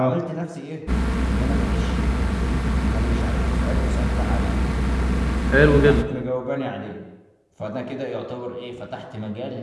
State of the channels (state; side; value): identical; both; correlation 1.00